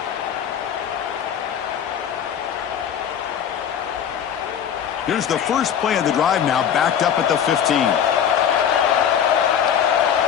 Here's the first play of the drive now, backed up at the 15.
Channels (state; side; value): quieter; right; 8.6 dB